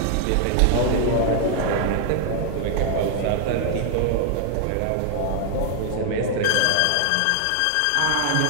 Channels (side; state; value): both; different; correlation 0.00